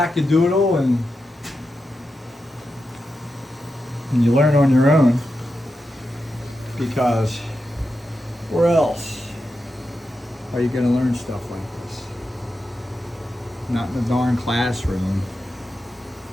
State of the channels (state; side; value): normal; both; correlation 0.88